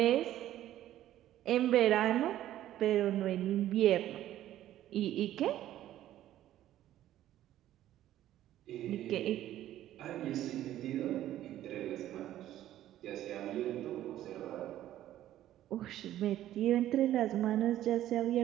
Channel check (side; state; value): left; quieter; 13.0 dB